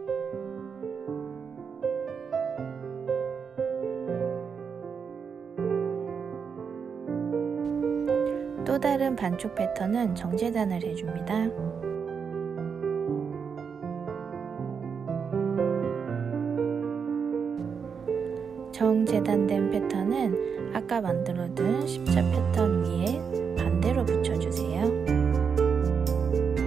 또 다른 반쪽 패턴은 정제단을 해줍니다. 정재단된 패턴은 아까 만들어둔 십자 패턴 위에 반대로 붙여주세요.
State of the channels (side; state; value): left; quieter; 6.3 dB